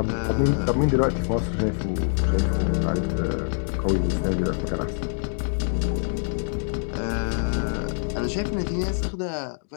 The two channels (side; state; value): right; silent; digital silence